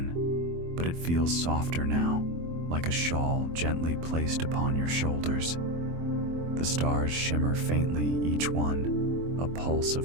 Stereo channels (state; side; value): late; left; 24 ms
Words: but it feels softer now, like a shawl gently placed upon your shoulders. The stars shimmer faintly, each one a pulse